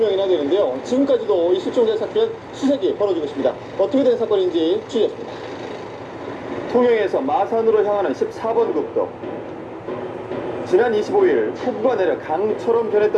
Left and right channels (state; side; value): identical; both; correlation 1.00